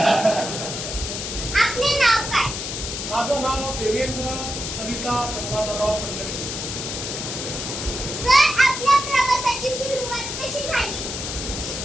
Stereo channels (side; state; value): left; noise; hiss, 5 dB below the sound